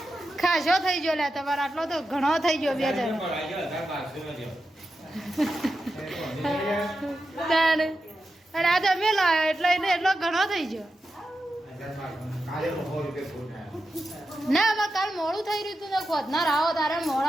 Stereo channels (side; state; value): both; normal; correlation 0.90